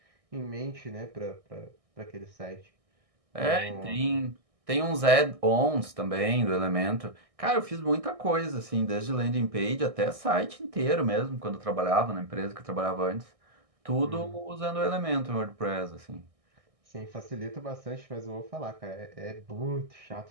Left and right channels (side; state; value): left; late; 1.6 ms